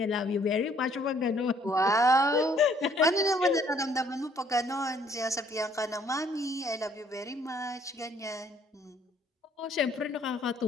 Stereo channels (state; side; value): normal; both; correlation 0.63